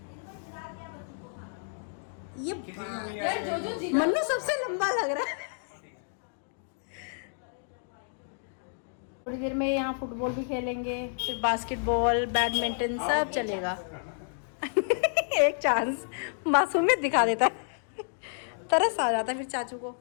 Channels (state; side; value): silent; right; digital silence